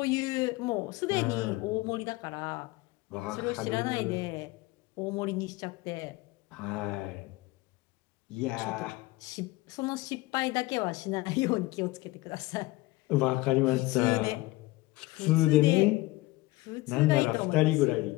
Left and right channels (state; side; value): quieter; right; 20.4 dB